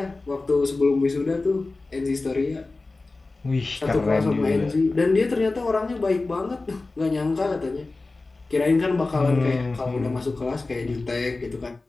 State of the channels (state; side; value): quieter; right; 3.4 dB